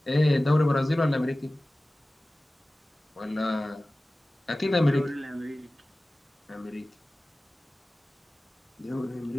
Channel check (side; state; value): both; normal; correlation 0.97